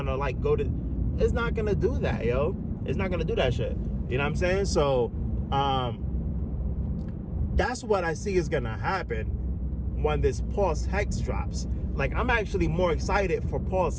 like go to. It's not gonna do that, yo. It's not gonna do that shit. You know what I'm saying? So that's what I see is gonna happen when this Pulse Hex drops. Like, I'm actually more excited for Pulse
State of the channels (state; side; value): identical; both; correlation 1.00